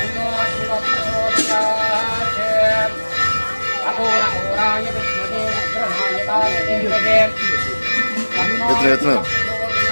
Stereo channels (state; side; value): inverted; both; correlation -1.00